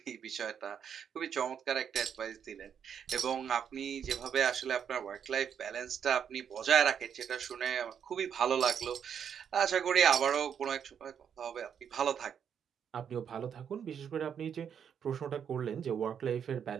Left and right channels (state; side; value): quieter; left; 8.0 dB